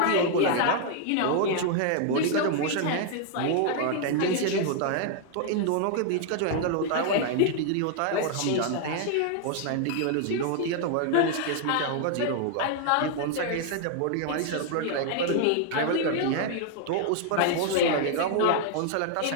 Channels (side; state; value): both; different; correlation 0.00